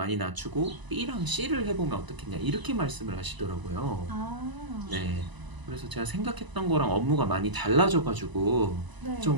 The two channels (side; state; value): left; late; 1.0 ms